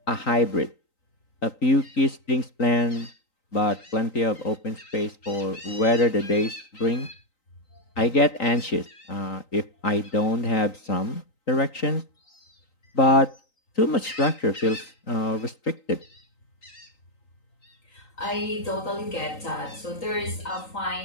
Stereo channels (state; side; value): late; right; 3.9 ms